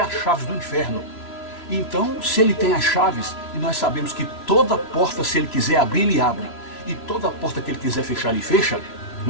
chaves do inferno. Então, se ele tem as chaves, e nós sabemos que toda porta, se ele quiser abrir, ele abre, e toda porta que ele quiser fechar, ele fecha,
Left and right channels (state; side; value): late; right; 3.0 ms